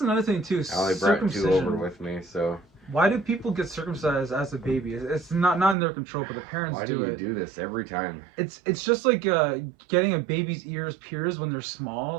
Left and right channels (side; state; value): left; drops out; at 5.8 s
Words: thing too. I only brought 2 over with me, so. Why do people get circumcised as a baby? It's not in their control, but the parents do it. Why do you do this every time? It's just like getting a baby's ears pierced when they're